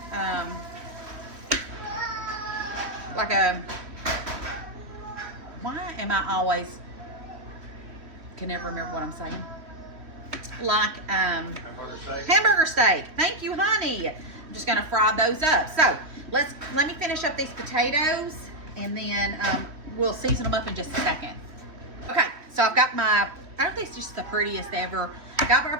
why am I always, can never remember what I'm saying. Like Hamburger steak. hamburger steak. Thank you, honey. I'm just gonna fry those up. So let me finish up these potatoes, and then we'll season them up in just a second. Okay, so I've got my, I don't think it's just the prettiest ever. Got our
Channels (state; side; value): late; left; 3.3 ms